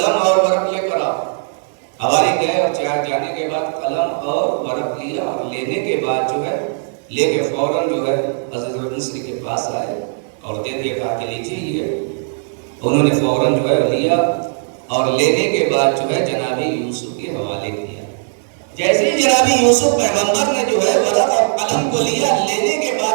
اور ورق لے کر آؤ۔ حواری گئے اور جانے کے بعد قلم اور ورق لیا اور لینے کے بعد جو ہے لے کے فوراً جو ہے عزیز مصر کے پاس آئے اور دے دیا، کہا کہ لیجیے یہ۔ انہوں نے فوراً جو ہے لیا اور لینے کے بعد جو ہے جناب یوسف کے حوالے کیا۔ جیسے ہی جناب یوسف پیغمبر نے جو ہے ورق اور قلم کو لیا، لینے کے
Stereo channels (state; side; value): silent; left; digital silence